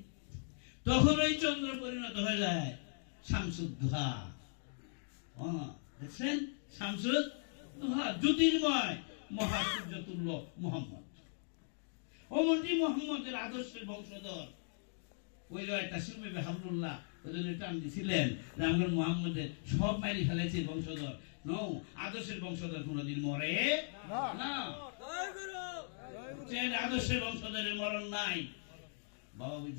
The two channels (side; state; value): right; silent; digital silence